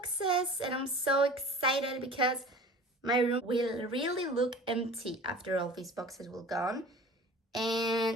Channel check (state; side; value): normal; both; correlation 0.41